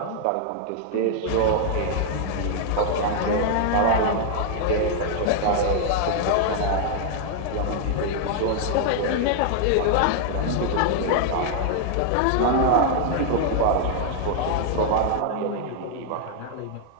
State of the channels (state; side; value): different; both; correlation 0.00